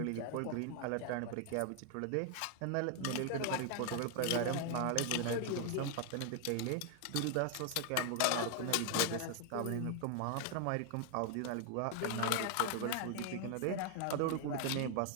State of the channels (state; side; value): different; both; correlation 0.00